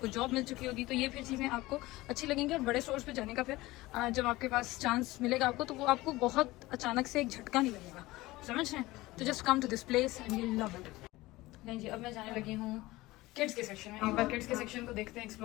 जॉब मिल चुकी होगी. तो ये फिर चीज़ें आपको अच्छी लगेंगी. और बड़े स्टोर्स पे जाने का फिर जब आपके पास चांस मिलेगा आपको, तो वो आपको बहुत अचानक से एक झटका नहीं लगेगा. समझ रहे हैं? तो just come to this place and you love it. नहीं जी, अब मैं जाने लगी हूँ किड्स के सेक्शन में. एक बार किड्स के सेक्शन को देखते हैं,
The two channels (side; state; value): right; quieter; 19.2 dB